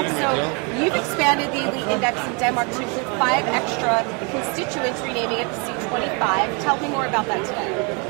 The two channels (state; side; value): quieter; left; 33.1 dB